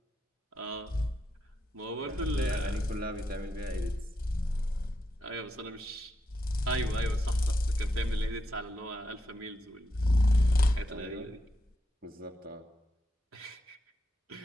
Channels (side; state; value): both; normal; correlation 0.84